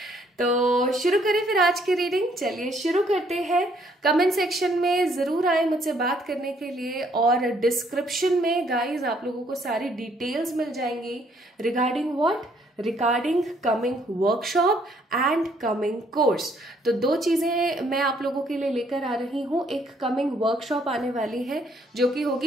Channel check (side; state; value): both; normal; correlation 0.66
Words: तो शुरू करें फिर आज की रीडिंग। चलिए शुरू करते हैं। कमेंट सेक्शन में जरूर आए मुझसे बात करने के लिए, और डिस्क्रिप्शन में गाइज आप लोगों को सारी डिटेल्स मिल जाएंगी regarding what, regarding coming workshop and coming course. तो 2 चीजें मैं आप लोगों के लिए लेकर आ रही हूँ। एक कमिंग वर्कशॉप आने वाली है जो कि